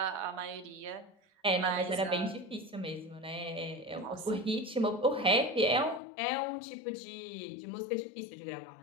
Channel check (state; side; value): drops out; right; at 6.0 s